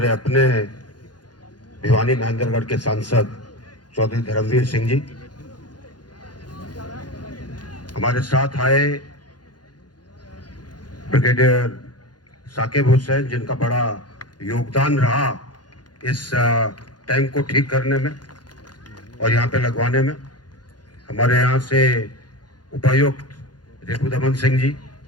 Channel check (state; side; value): late; right; 0.70 ms